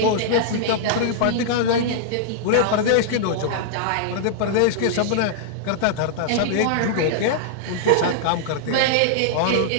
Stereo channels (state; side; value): different; both; correlation -0.01